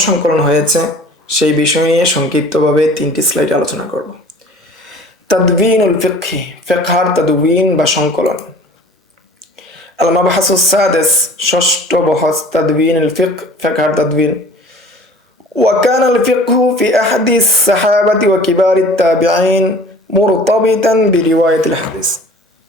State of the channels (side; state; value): both; normal; correlation 0.46